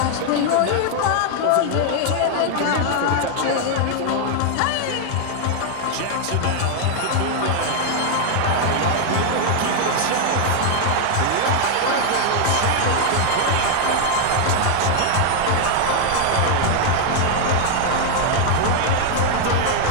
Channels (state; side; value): different; both; correlation 0.00